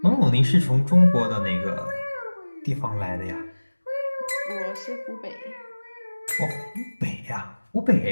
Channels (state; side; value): inverted; both; correlation -1.00